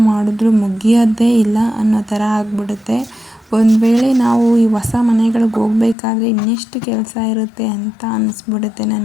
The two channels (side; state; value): right; drops out; at 6.0 s